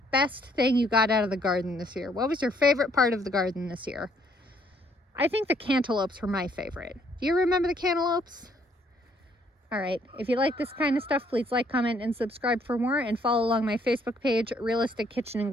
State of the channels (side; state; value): both; normal; correlation 0.66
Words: best thing you got out of the garden this year? What was your favorite part of the garden this year? I think the cantaloupes were my favorite. Do you remember the cantaloupes? All right, if you like this kind of stuff, please like, comment, and subscribe for more, and follow along my Facebook page, Realistic Kitchen and